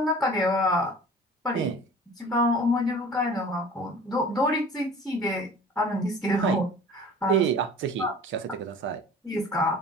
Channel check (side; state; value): both; normal; correlation 0.44